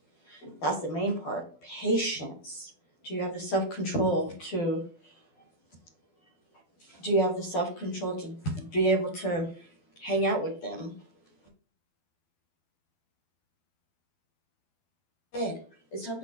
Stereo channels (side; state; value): right; late; 12 ms